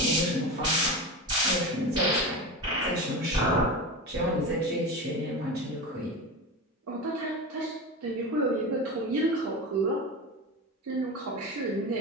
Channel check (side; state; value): both; normal; correlation 0.25